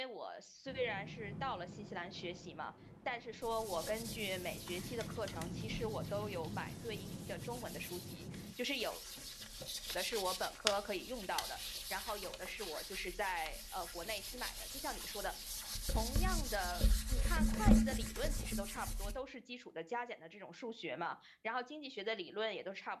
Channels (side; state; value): both; identical; correlation 1.00